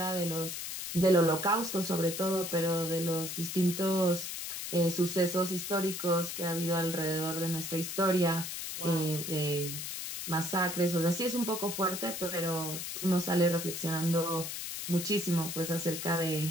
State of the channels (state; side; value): noise; left; hiss, 5 dB below the sound